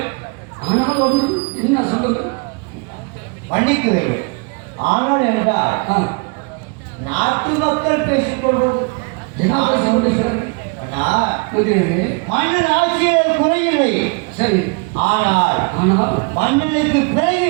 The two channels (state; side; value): quieter; left; 31.8 dB